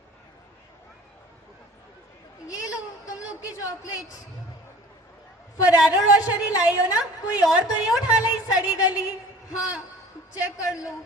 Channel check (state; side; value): normal; both; correlation 0.45